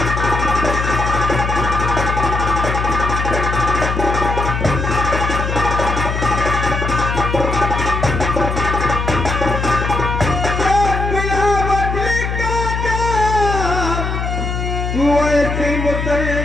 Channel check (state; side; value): noise; left; hum, 2 dB below the sound